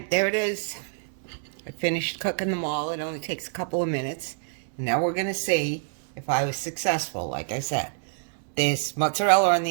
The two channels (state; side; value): silent; left; digital silence